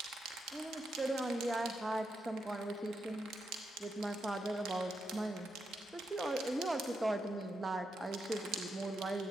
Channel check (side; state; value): both; normal; correlation 0.84